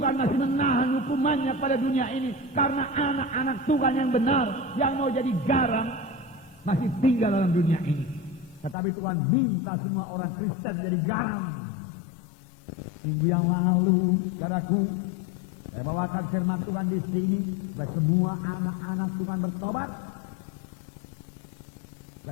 masih menahan hukumannya pada dunia ini karena anak-anak Tuhan yang benar, yang mau jadi garam, masih tinggal dalam dunia ini. Tetapi Tuhan minta semua orang Kristen jadi garam. Minggu yang lalu, saudaraku, saya bawakan firman Tuhan di sini, supaya semua anak-anak Tuhan bertobat,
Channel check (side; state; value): right; drops out; at 8.8 s